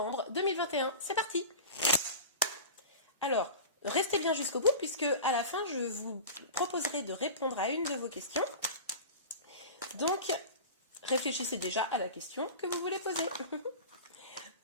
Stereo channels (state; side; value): inverted; both; correlation -0.32